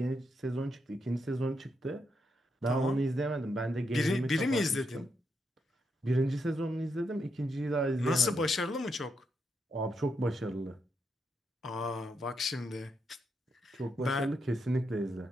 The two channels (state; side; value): normal; both; correlation 0.81